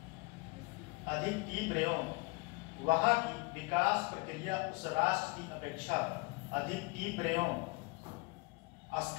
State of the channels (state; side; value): quieter; right; 26.6 dB